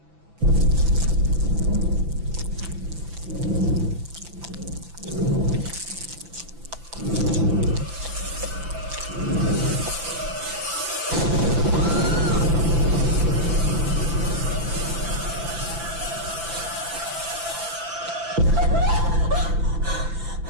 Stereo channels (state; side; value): late; left; 5.9 ms